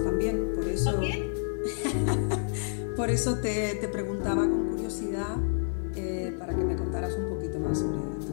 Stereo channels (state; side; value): silent; right; digital silence